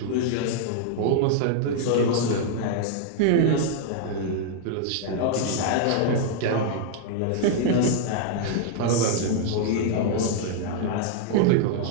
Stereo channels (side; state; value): both; different; correlation -0.01